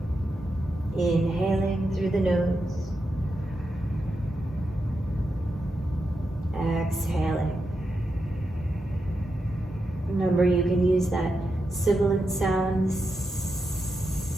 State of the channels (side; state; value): both; normal; correlation 0.87